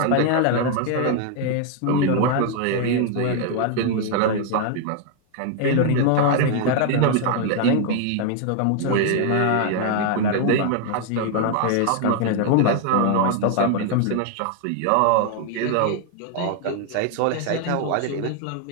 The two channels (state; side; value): different; both; correlation 0.00